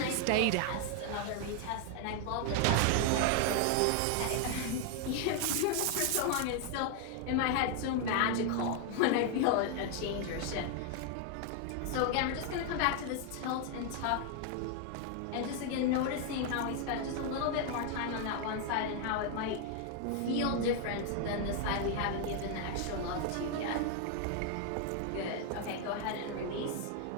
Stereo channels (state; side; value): different; both; correlation 0.00